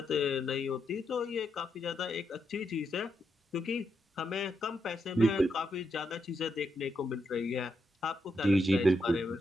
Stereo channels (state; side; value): normal; both; correlation 0.82